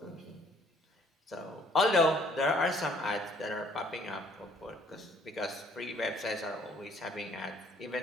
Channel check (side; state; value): both; normal; correlation 0.60